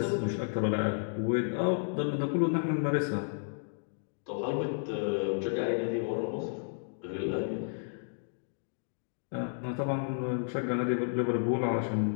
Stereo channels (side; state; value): right; silent; digital silence